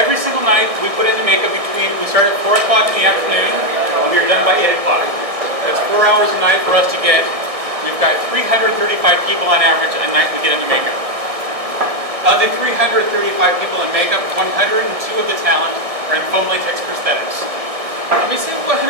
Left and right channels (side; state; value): left; late; 1.6 ms